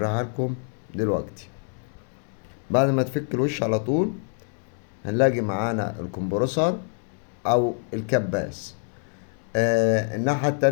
لكم دلوقتي. بعد ما تفك الوش على طول هنلاقي معانا الكمبرسور او الكباس. الناحية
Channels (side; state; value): right; silent; 55 dB below the other